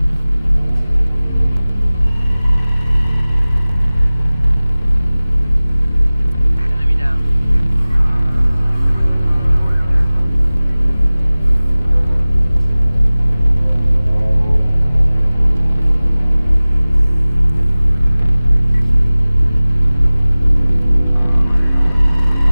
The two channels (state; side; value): inverted; both; correlation -0.98